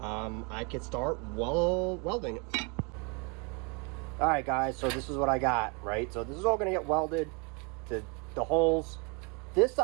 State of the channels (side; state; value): left; quieter; 32.7 dB